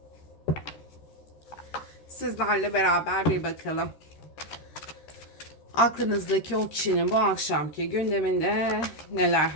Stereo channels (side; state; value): right; late; 13 ms